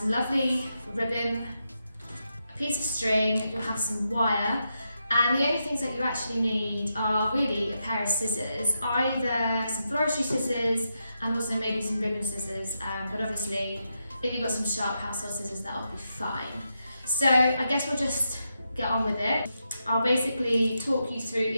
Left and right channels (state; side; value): inverted; both; correlation -0.85